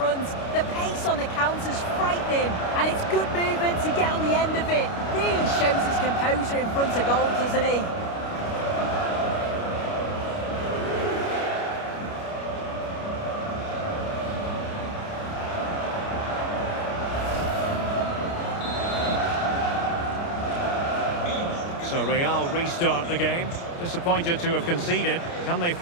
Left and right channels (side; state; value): right; late; 29 ms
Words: The pace on the counter's frightening, and it's good movement to get on the end of it. Really shows his composure in front of goal, doesn't he? So Real restart the game. Disappointed to have conceded. Can they